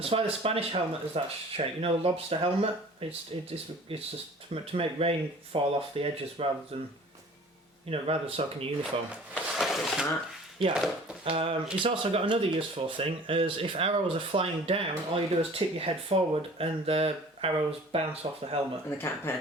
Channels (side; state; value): both; normal; correlation 0.46